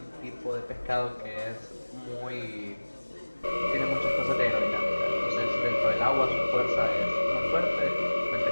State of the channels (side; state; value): both; inverted; correlation -1.00